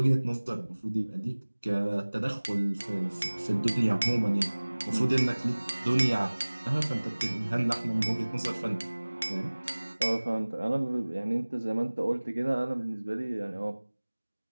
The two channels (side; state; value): both; inverted; correlation -1.00